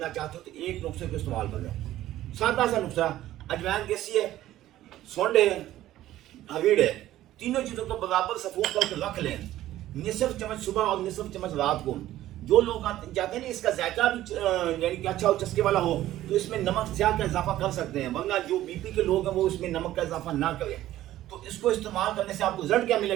چاہتے ہو تو ایک نسخے کو استعمال کر لیں، سادہ سا نسخہ۔ اجوائن کیسی ہے، سونڈ ہے، ہویڑ ہے، تینوں چیزوں کو برابر صفوف کر کے رکھ لیں، نصف چمچ صبح اور نصف چمچ رات کو۔ جو لوگ چاہتے ہیں نا اس کا ذائقہ بھی یعنی کہ اچھا ہو، چسکے والا ہو، تو اس میں نمک سیاہ کا اضافہ کر سکتے ہیں، ورنہ جو بی پی کے لوگ ہیں وہ اس میں نمک کا اضافہ نہ کریں۔ تو اس کو استعمال کرنے سے آپ کو رزلٹ کیا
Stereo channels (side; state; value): left; quieter; 14.1 dB